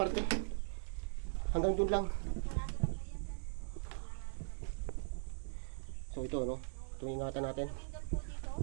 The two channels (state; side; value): silent; left; digital silence